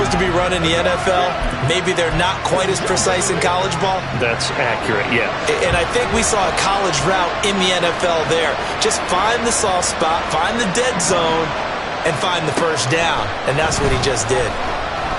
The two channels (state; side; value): identical; both; correlation 1.00